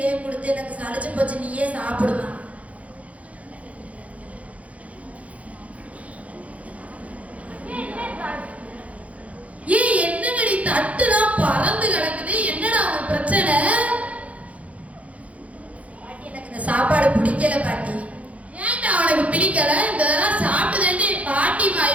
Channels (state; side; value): late; left; 0.066 ms